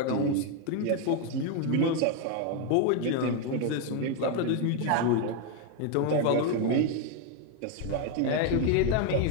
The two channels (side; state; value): both; different; correlation 0.01